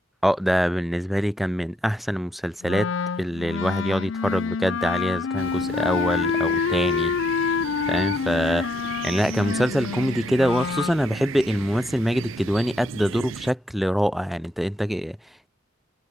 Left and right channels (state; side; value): normal; both; correlation 0.76